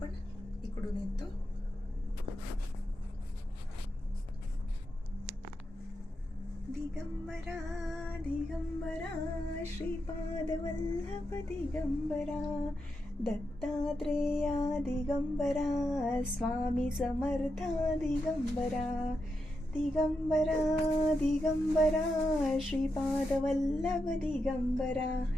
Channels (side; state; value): both; normal; correlation 0.86